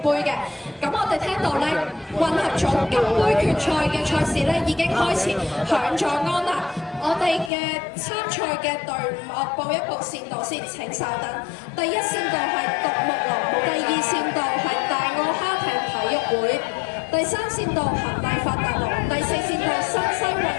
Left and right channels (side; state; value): right; drops out; at 7.5 s